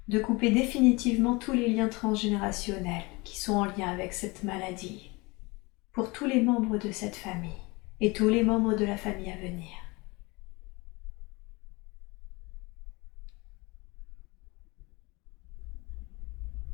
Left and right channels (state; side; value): quieter; right; 25.3 dB